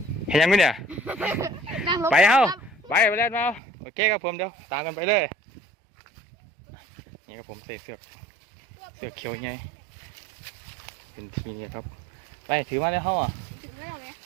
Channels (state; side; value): drops out; left; at 3.6 s